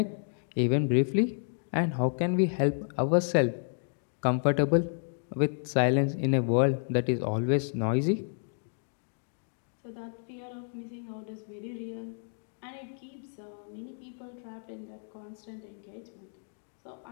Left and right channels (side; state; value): right; silent; digital silence